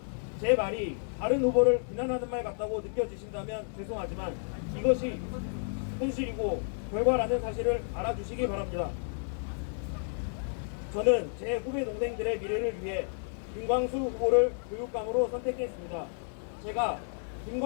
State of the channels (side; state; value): right; silent; digital silence